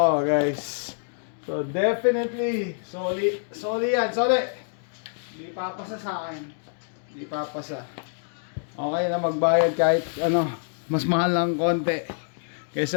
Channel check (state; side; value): silent; right; digital silence